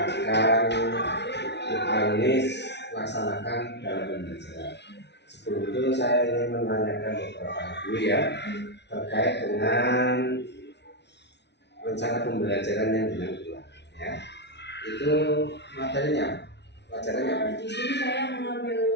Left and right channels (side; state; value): right; late; 0.50 ms